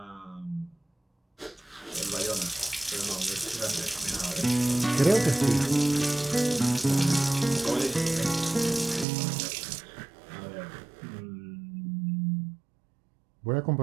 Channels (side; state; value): left; drops out; at 9.1 s